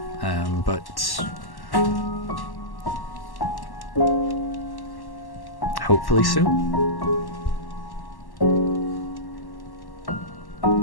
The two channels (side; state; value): right; late; 1.1 ms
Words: But hopefully soon.